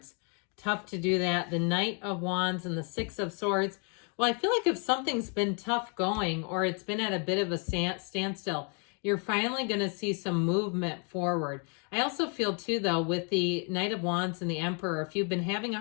Tough to do that. The Knight of Wands and the 6 of Swords. Well, I feel like if something's been tough going or it's been at a bit of a standstill, you're finally going to see some movement forward. I also feel too, though, with the Knight of Wands and the Emperor, if you've been having a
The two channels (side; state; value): right; quieter; 38.3 dB